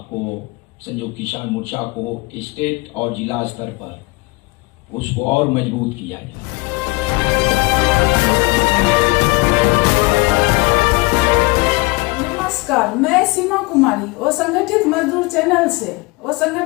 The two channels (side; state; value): right; quieter; 24.5 dB